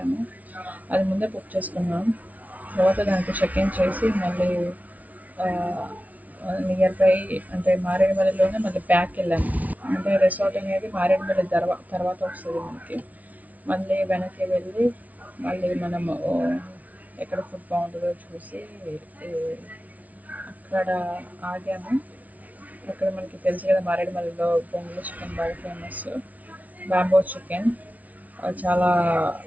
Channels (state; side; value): late; left; 0.072 ms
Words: అది ముందే బుక్ చేసుకున్నాం. తర్వాత దానికి చెక్ ఇన్ చేసి మళ్ళీ నియర్ బై అంటే మారేడుమల్లిలోనే మళ్ళీ బ్యాక్ వెళ్ళాము. అంటే రిసార్ట్ అనేది మారేడుమల్లి తర్వాత వస్తుంది మనకి. మళ్ళీ వెనక్కి వెళ్ళి మళ్ళీ మనము ఎక్కడ ఫుడ్ బాగుంటుందో చూసి అక్కడ ఆగాము. అక్కడ మనకి తెలుసు కదా మారేడుమల్లిలో బొంగులో చికెన్ బాగా ఫేమస్. బ్యాంబో చికెన్ చాలా